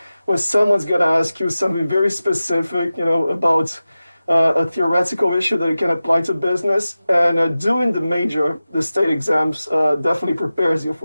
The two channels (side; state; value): both; inverted; correlation -0.95